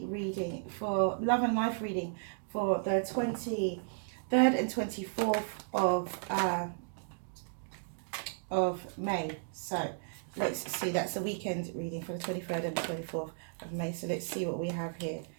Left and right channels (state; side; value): silent; left; digital silence